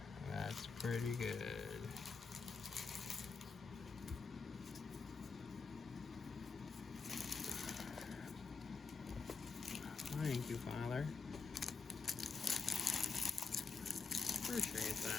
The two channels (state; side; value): quieter; right; 4.8 dB